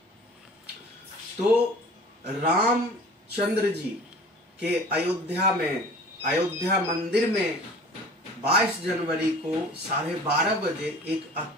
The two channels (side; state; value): both; normal; correlation 0.44